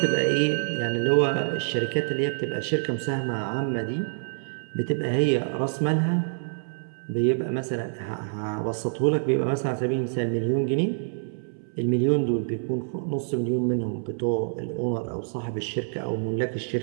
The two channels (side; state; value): left; silent; 61 dB below the other